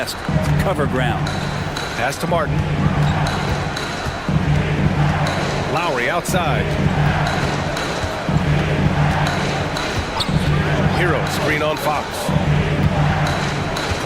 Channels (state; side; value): identical; both; correlation 1.00